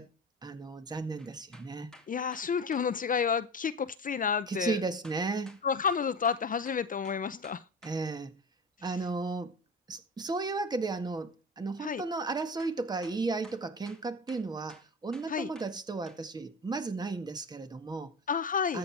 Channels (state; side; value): normal; both; correlation 0.29